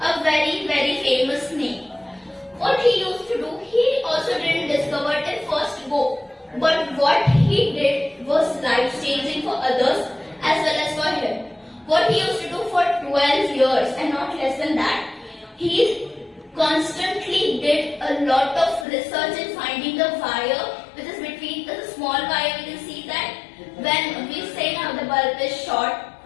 a very, very famous name. What he used to do, he also didn't discover it in first go. But what he did was life-changing for others as well as for him. What he used to do for 12 years and not less than that, he constantly did a lot of research in finding the wire which is between the small wire. We can see that when we say now the bulb is short,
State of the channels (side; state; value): right; drops out; at 18.9 s